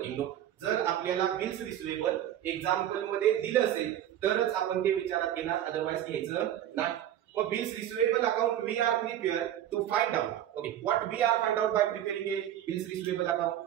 note. जर आपल्याला bills receivable example मध्ये दिलं असेल तरच आपण ते विचारात घेणार, अदरवाइज घ्यायचं नाही. मग bills receivable account we are prepare to find out. Okay, what we are find out by preparing a bills receivable account.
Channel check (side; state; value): left; quieter; 11.4 dB